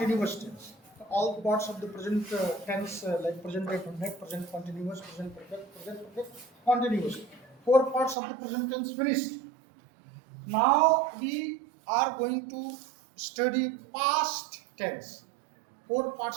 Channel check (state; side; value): drops out; left; at 8.2 s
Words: tense. All the parts of the present tense, like present definite, present continuous, present perfect, continuous. 4 parts of the present tense finished. Now we are going to study past tense. 4